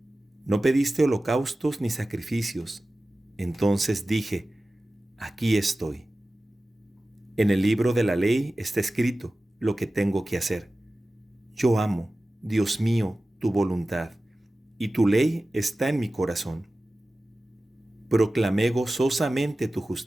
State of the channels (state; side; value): normal; both; correlation 0.96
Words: No pediste holocaustos ni sacrificios. Entonces dije, aquí estoy. En el libro de la ley está escrito lo que tengo que hacer. Yo amo, Dios mío, tu voluntad, y tu ley está en mi corazón. Proclamé gozosamente tu